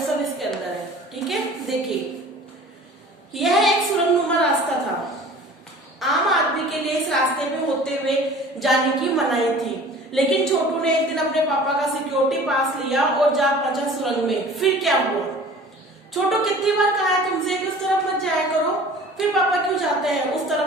सब इसके अंदर है। ठीक है, देखिए यह एक सुरंगनुमा रास्ता था। आम आदमी के लिए इस रास्ते पे होते हुए जाने की मनाही थी, लेकिन छोटू ने एक दिन अपने पापा का सिक्योरिटी पास लिया और जा पहुंचा सुरंग में। फिर क्या हुआ? छोटू कितनी बार कहा है तुमसे कि उस तरफ मत जाया करो, फिर पापा क्यों जाते हैं उस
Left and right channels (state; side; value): normal; both; correlation 0.45